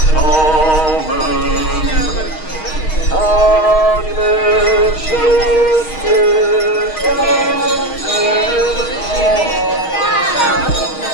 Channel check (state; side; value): late; right; 6.4 ms